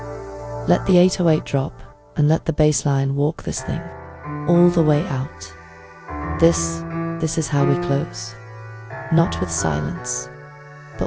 Let the 808 drop, and let the bass line walk this thing all the way out. This is how we close. Not with silence,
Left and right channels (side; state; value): both; identical; correlation 1.00